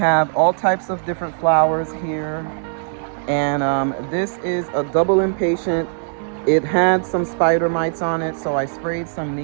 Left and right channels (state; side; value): silent; left; digital silence